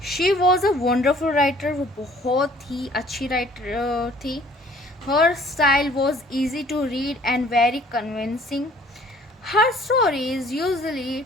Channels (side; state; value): both; normal; correlation 0.55